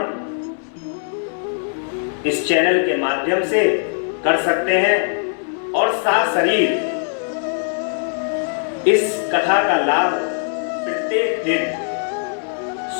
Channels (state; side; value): silent; right; 65 dB below the other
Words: इस चैनल के माध्यम से कर सकते हैं। और सशरीर इस कथा का लाभ प्रत्येक दिन